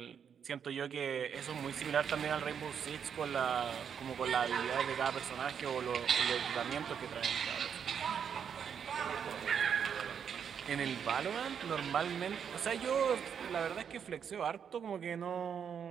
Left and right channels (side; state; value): left; quieter; 7.6 dB